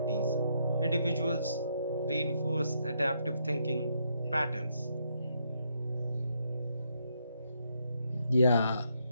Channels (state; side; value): inverted; both; correlation -0.76